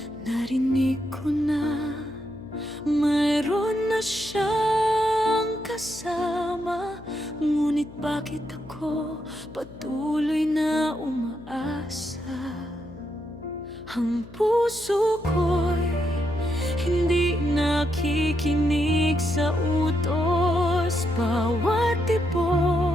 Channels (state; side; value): noise; left; hum, 18 dB below the sound